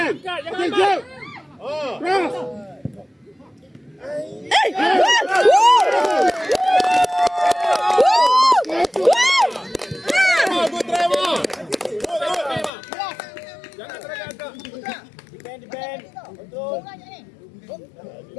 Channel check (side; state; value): right; drops out; at 12.7 s